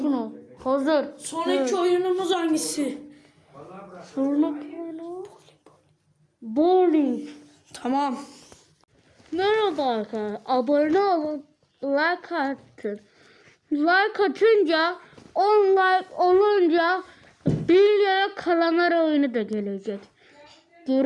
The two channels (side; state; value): both; identical; correlation 1.00